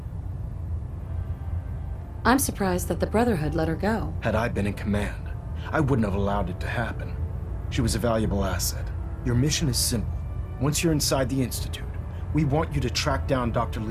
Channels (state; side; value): identical; both; correlation 1.00